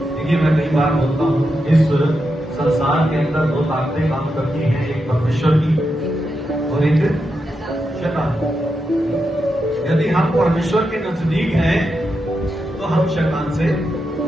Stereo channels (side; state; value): both; normal; correlation 0.86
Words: देखिए मैं कई बार बोलता हूं, इस संसार के अंदर दो ताकतें काम करती हैं, एक परमेश्वर की और एक शैतान। यदि हम परमेश्वर के नजदीक हैं तो हम शैतान से